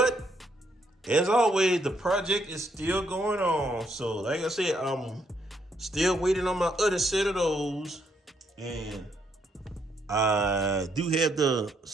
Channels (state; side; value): normal; both; correlation 0.74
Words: as always, the project is still going on. So, like I said, I'm still waiting on my other set of those. And I do have the